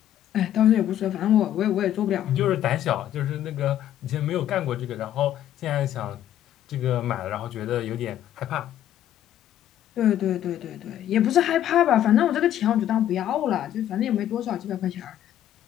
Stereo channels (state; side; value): quieter; right; 11.5 dB